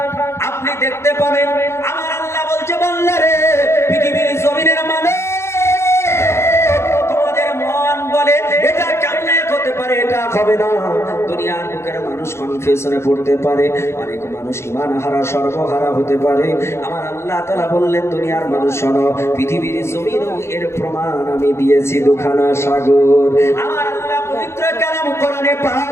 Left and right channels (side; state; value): right; late; 0.13 ms